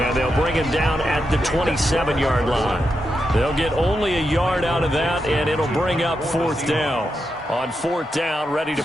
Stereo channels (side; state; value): both; normal; correlation 0.86